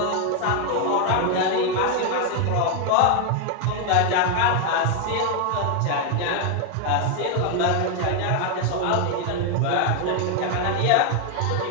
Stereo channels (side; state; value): both; different; correlation 0.01